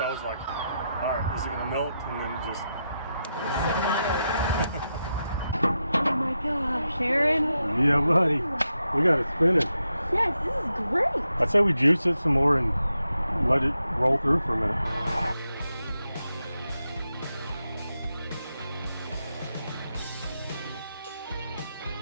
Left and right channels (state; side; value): inverted; both; correlation -0.86